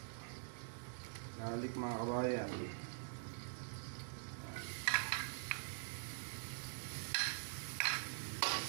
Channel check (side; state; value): left; silent; digital silence